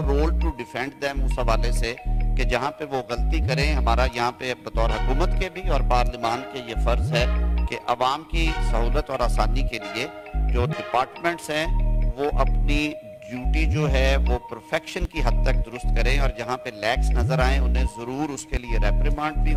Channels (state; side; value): identical; both; correlation 1.00